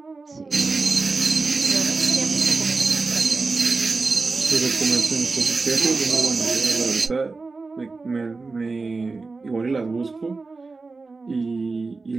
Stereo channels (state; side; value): quieter; left; 3.9 dB